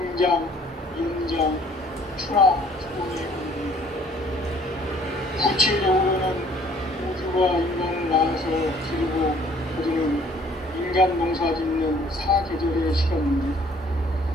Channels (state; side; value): normal; both; correlation 0.58